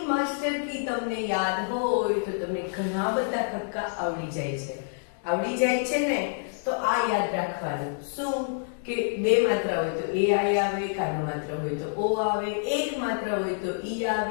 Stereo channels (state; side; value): silent; right; digital silence